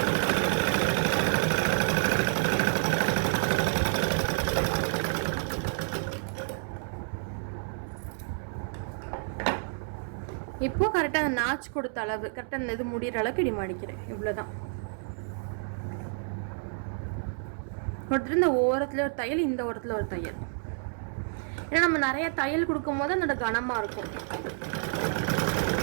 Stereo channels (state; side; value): silent; left; 58 dB below the other